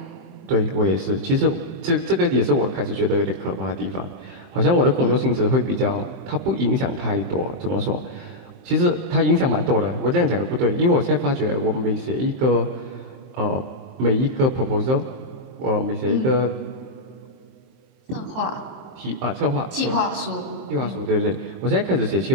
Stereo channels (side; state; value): left; late; 23 ms